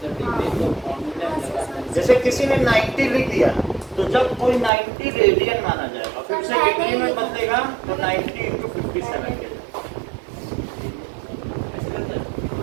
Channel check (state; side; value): drops out; left; at 4.7 s